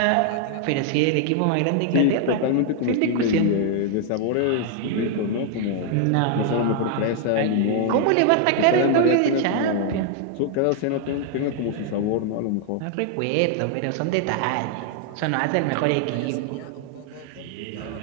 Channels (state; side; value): different; both; correlation 0.00